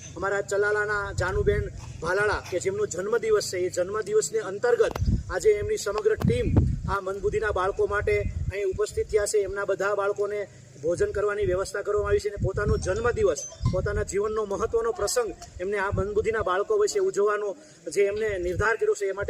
અમારા ચલાલાના જાનુબેન ભાલાળા કે જેમનો જન્મદિવસ છે, એ જન્મદિવસને અંતર્ગત આજે એમની સમગ્ર ટીમ આ મંદબુદ્ધિના બાળકો માટે અહીં ઉપસ્થિત થયા છે. એમના બધા બાળકોને ભોજન કરવાની વ્યવસ્થા કરવામાં આવી છે અને પોતાનો જન્મદિવસ, પોતાના જીવનનો મહત્વનો પ્રસંગ એમને આ મંદબુદ્ધિના બાળકો વિશે ઉજવવાનો જે એમને નિર્ધાર કર્યો છે, એ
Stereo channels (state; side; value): identical; both; correlation 1.00